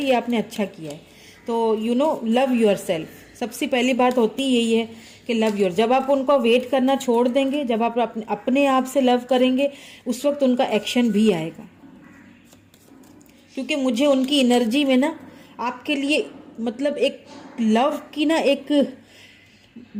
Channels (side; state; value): both; identical; correlation 1.00